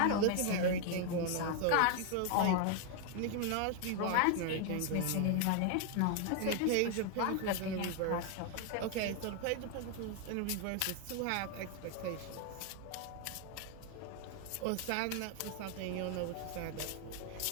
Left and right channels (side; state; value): both; different; correlation 0.00